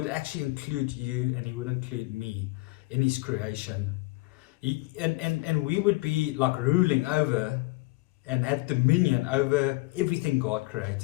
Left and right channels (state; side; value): quieter; right; 22.1 dB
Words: actually include you, and He would include me in His creation. And we would be like ruling over and have dominion over everything God